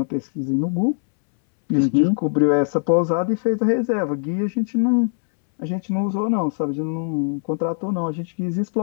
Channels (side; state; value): right; silent; 65 dB below the other